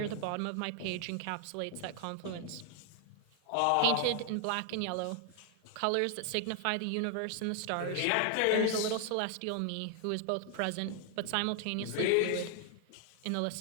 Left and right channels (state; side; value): different; both; correlation 0.00